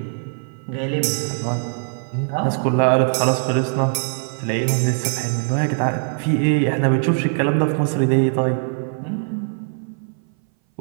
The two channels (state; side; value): silent; left; 59 dB below the other